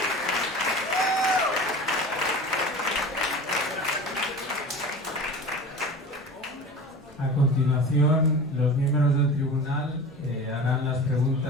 A continuación, los miembros del tribunal harán las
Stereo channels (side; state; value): both; normal; correlation 0.36